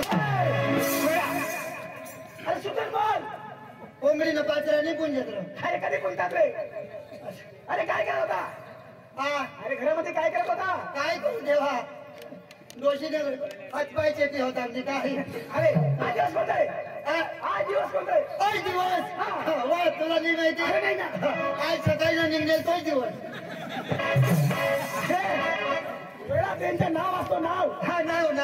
अरे सुधर बोल. कोंबडी ना पाचरा नाही पुंजत रे. अरे कधी कोणतात रे? अरे काय करत होता? हा अरे घरामध्ये काय करत होता? काय करू देवा, दोषीने हातपाय चेपी होता म्हणजे काय. अरे आज दिवस कोणताय? आज दिवस कोणताय? तोच दिवस. वा तुला नाही माहिती. अरे नाही ना. आज सकाळी निघेल तोच दिवस. वेळा त्यांचं नाव असतो नाव. हा नाव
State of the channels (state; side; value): identical; both; correlation 1.00